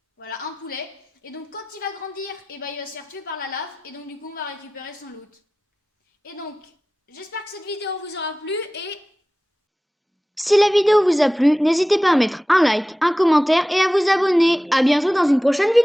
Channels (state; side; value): normal; both; correlation 0.96